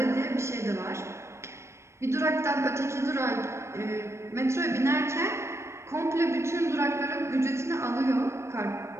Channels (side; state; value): left; late; 0.13 ms